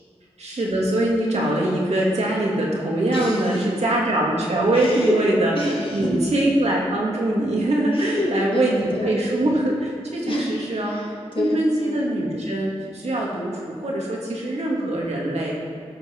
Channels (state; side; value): normal; both; correlation 0.76